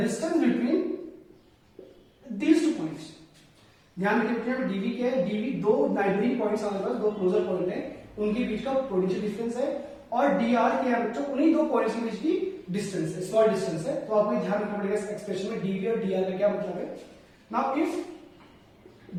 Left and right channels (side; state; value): both; identical; correlation 1.00